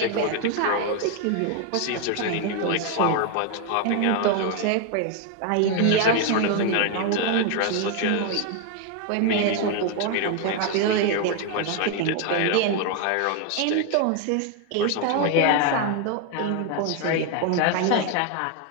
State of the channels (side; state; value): both; different; correlation 0.01